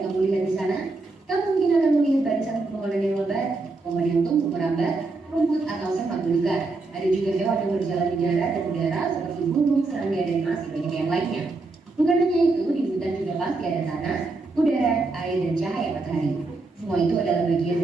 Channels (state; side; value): quieter; left; 3.5 dB